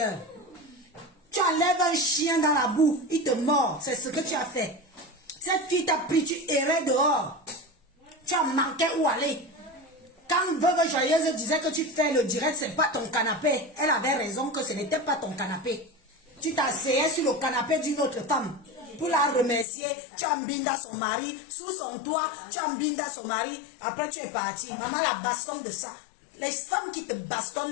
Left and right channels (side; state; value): right; drops out; at 19.7 s